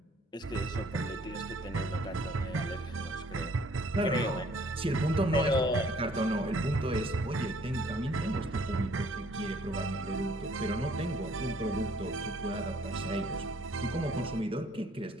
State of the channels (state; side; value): normal; both; correlation 0.60